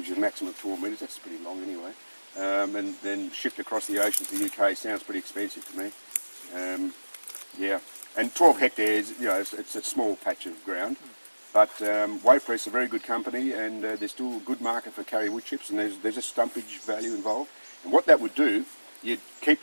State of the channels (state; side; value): inverted; both; correlation -1.00